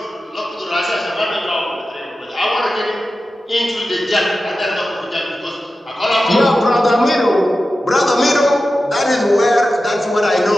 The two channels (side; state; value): both; normal; correlation 0.93